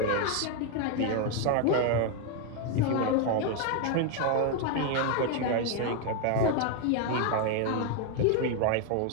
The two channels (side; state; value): both; different; correlation 0.01